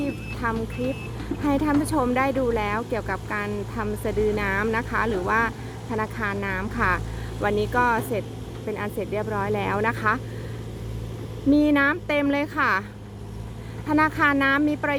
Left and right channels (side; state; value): both; identical; correlation 1.00